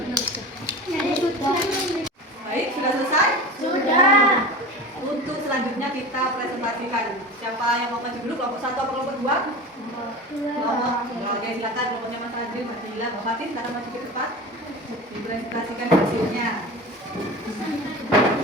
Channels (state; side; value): normal; both; correlation 0.32